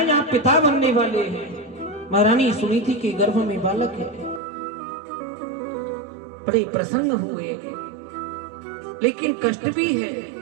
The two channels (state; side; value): drops out; left; at 4.4 s